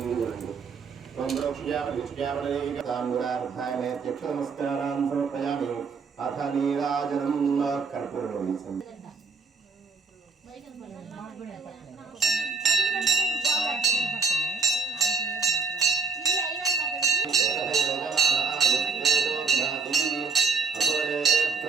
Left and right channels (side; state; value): left; quieter; 4.9 dB